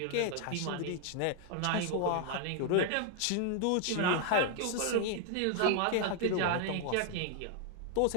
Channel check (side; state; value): both; different; correlation 0.00